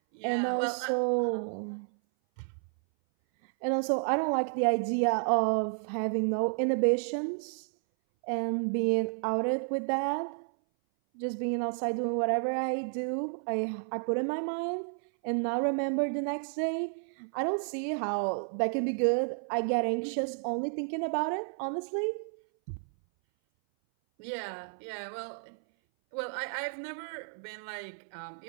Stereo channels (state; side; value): silent; left; 57 dB below the other